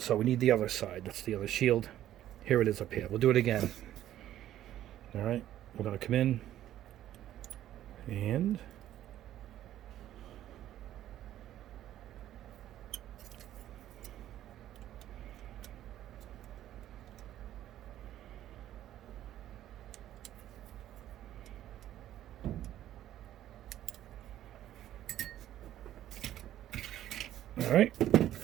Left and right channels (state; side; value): quieter; left; 12.5 dB